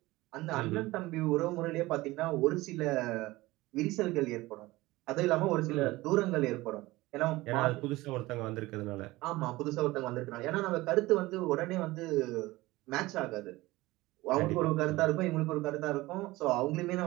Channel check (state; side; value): quieter; left; 19.5 dB